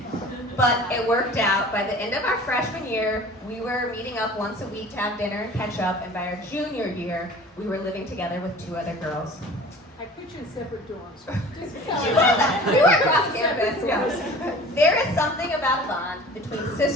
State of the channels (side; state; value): both; normal; correlation 0.44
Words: But it worked out. By the end of our freshman year, we were meeting up once a week to have dinner and catch up, and by our junior year, we were living together with 2 other girls. I put you in separate dorms. We were across campus. Yeah. There is something about a bond between